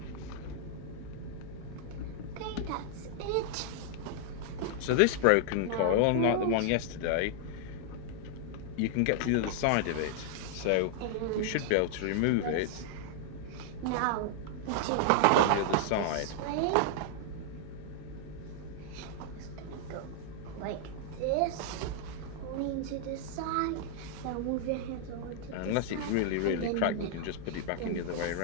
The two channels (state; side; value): different; both; correlation -0.01